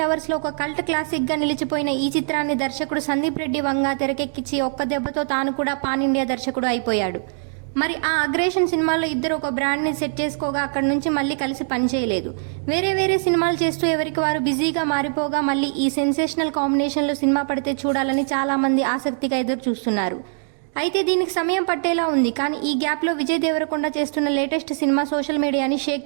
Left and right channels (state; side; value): silent; left; digital silence